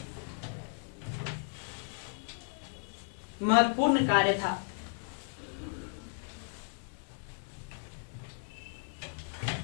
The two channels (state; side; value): silent; right; 55 dB below the other